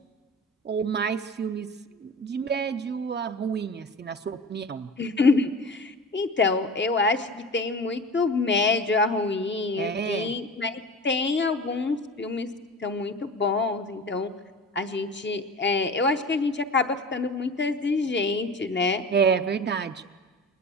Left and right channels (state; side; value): normal; both; correlation 0.34